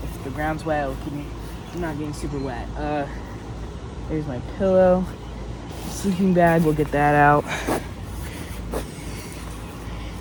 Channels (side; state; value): both; identical; correlation 1.00